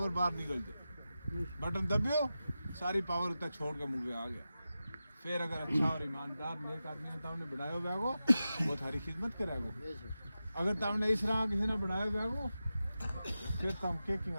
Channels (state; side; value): inverted; both; correlation -0.92